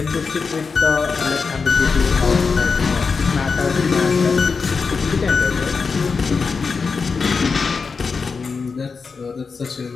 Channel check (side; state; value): right; quieter; 5.0 dB